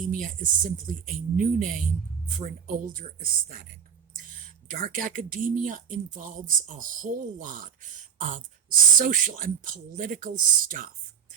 is simply a new name for an older aesthetic. Dark academia involves a whole lot of social and political stuff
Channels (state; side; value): quieter; left; 7.9 dB